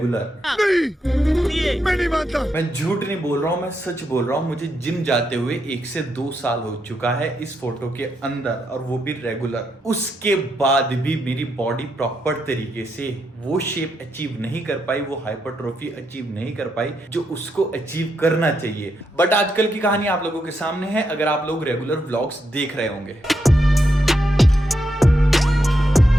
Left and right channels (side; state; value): both; normal; correlation 0.81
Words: नहीं, मैं नहीं मानता। मैं झूठ नहीं बोल रहा हूं, मैं सच बोल रहा हूं। मुझे जिम जाते हुए 1 से 2 साल हो चुका है इस फोटो के अंदर, और वो भी रेगुलर। उसके बाद भी मेरी बॉडी प्रॉपर तरीके से वो शेप अचीव नहीं कर पाई, वो हाइपरट्रोफी अचीव नहीं कर पाई जो उसको अचीव करना चाहिए। बट आजकल की कहानी आप लोगों के सामने है, अगर आप लोग रेगुलर व्लॉग्स देख रहे होंगे।